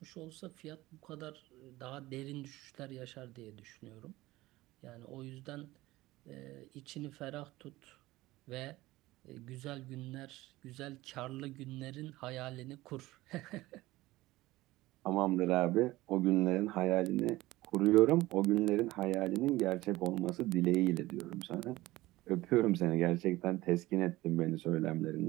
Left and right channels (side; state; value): left; quieter; 18.3 dB